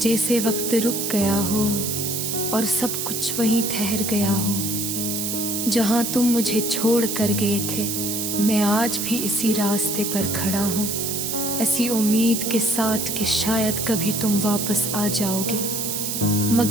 वक्त रुक गया हो और सब कुछ वहीं ठहर गया हो जहां तुम मुझे छोड़ कर गए थे। मैं आज भी इसी रास्ते पर खड़ा हूँ, ऐसी उम्मीद के साथ कि शायद कभी तुम वापस आ जाओगे।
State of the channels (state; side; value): noise; right; hiss, 2 dB below the sound